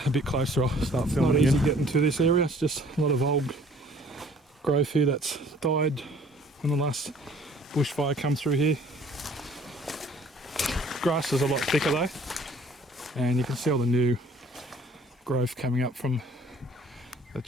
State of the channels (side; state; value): both; normal; correlation 0.55